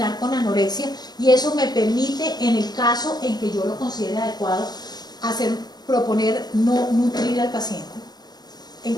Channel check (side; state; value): right; late; 0.20 ms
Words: con anorexia, y eso me permite, en el caso en que yo lo considere adecuado, proponer no nutrir al paciente en